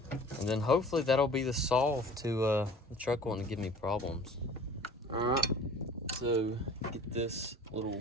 And then hopefully that'll be the solve to the truck wanting to give me problems. Alright, so get this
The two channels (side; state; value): both; normal; correlation 0.46